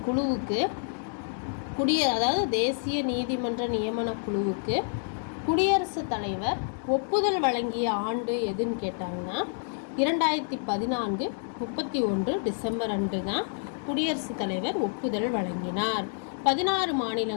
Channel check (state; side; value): silent; right; digital silence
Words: குழுவுக்கு அதாவது தேசிய நீதிமன்ற நியமன குழுவுக்கு குடியரசுத் தலைவர் ஒப்புதல் வழங்கிய ஆண்டு எதுன்னு கேட்டாங்கன்னா 2014 31 டிசம்பர் அன்று தான் குடியரசுத் தலைவர் ஒப்புதல் வழங்கினார். 16